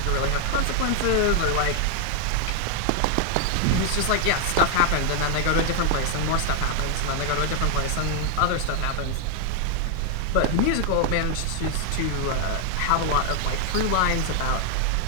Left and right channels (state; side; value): different; both; correlation 0.00